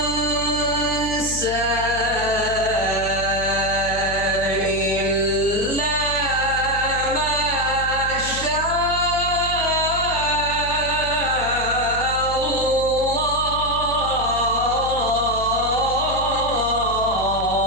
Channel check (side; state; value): left; noise; hum, 9 dB below the sound